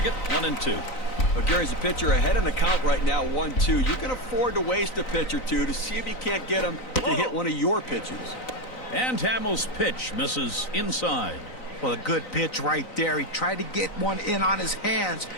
1-2. Well, Gary's a pitcher ahead in the count right now, 1-2. You can afford to waste a pitch or two to see if you can't get him to hit one of your pitches. And Hamels' pitch misses inside. Well, a good pitch right there. He tried to get one in on his hands,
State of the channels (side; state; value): right; late; 3.9 ms